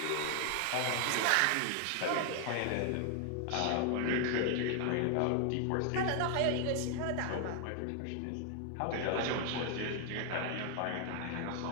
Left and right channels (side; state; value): both; different; correlation 0.00